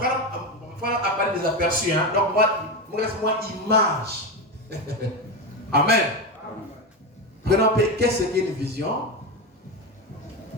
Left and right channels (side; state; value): both; normal; correlation 0.15